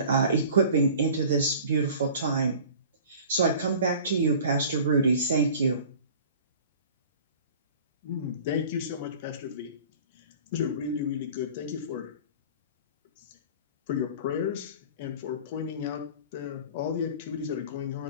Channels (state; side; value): inverted; both; correlation -0.44